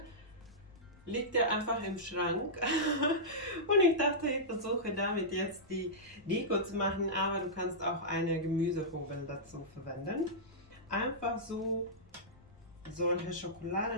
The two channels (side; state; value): left; noise; rumble, 26 dB below the sound